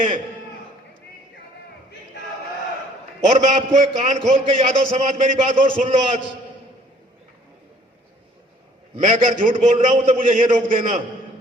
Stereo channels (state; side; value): normal; both; correlation 0.58